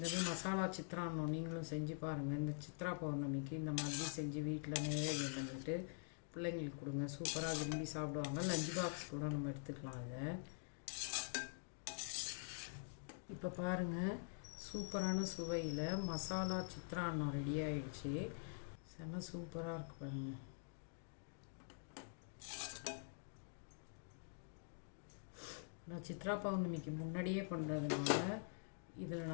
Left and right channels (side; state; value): right; silent; digital silence